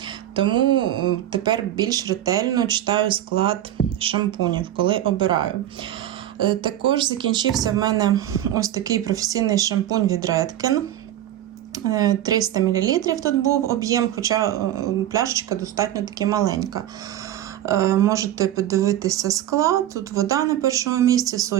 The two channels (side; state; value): left; quieter; 12.4 dB